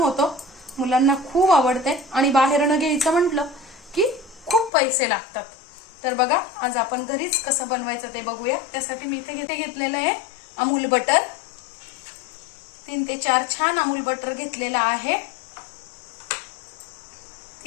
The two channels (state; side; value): drops out; right; at 4.7 s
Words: मुलांना खूप आवडते आणि बाहेर न घ्यायचं म्हटलं की खूप पैसे लागतात। तर बघा आज आपण घरीच कसं बनवायचं ते बघूया। त्यासाठी मी इथे घेतलेलं आहे अमूल बटर, 3 ते 4 छान अमूल बटर घेतलेला आहे,